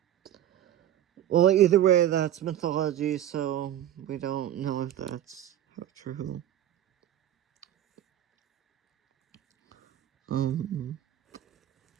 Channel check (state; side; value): quieter; left; 11.9 dB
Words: well, either way, that's mythology, so we don't know if that's true.